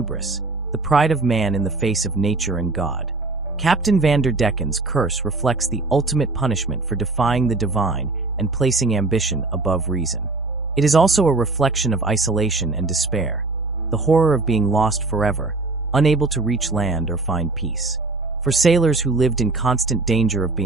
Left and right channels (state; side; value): quieter; left; 3.4 dB